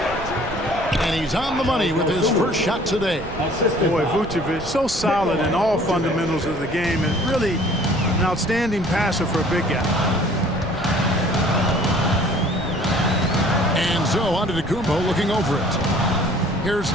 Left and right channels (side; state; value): right; noise; rumble, 13 dB below the sound